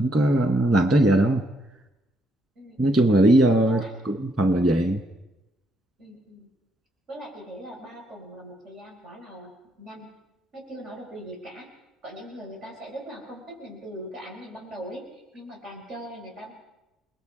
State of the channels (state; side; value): normal; both; correlation 0.74